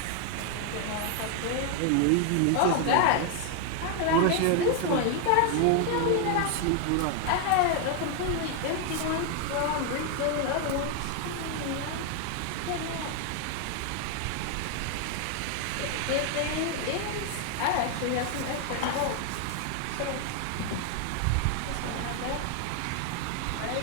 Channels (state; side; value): different; both; correlation 0.00